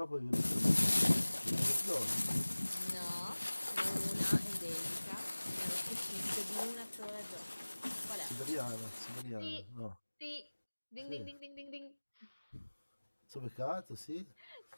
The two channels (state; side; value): inverted; both; correlation -1.00